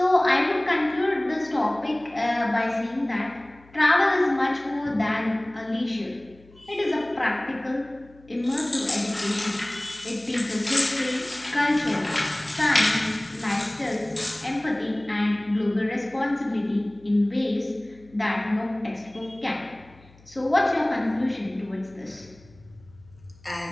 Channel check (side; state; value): left; noise; hum, 26 dB below the sound